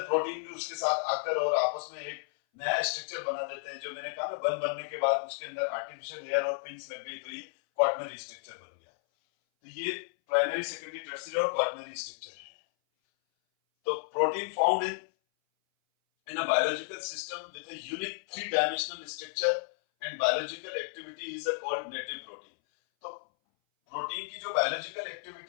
प्रोटीन भी उसके साथ आकर और आपस में एक नया स्ट्रक्चर बना देते हैं। जो मैंने कहा ना, बनने के बाद उसके अंदर आर्टिफिशियल लेयर और पिंस लग गई, तो ये क्वाटरनरी स्ट्रक्चर बन गया। तो ये प्राइमरी, सेकेंडरी, टर्शियरी और क्वाटरनरी स्ट्रक्चर है। तो protein found in a biological system with a unique three-dimensional structure and biological activity is called native protein. तो प्रोटीन की जो बायोलॉजिकल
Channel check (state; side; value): silent; right; 56 dB below the other